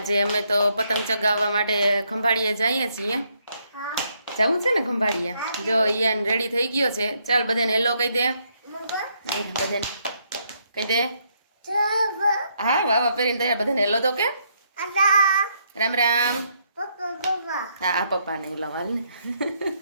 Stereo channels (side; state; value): both; inverted; correlation -0.74